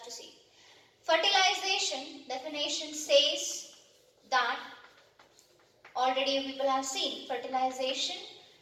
to see. Fertilization definition says that, already you people have seen, fertilization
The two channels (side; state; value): both; identical; correlation 1.00